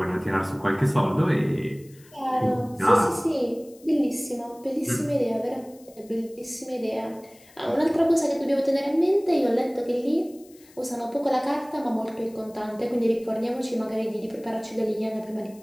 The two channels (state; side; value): noise; left; hiss, 26 dB below the sound